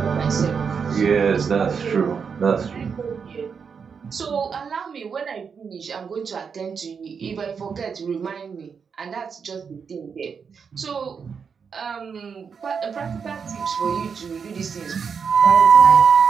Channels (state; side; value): quieter; left; 6.2 dB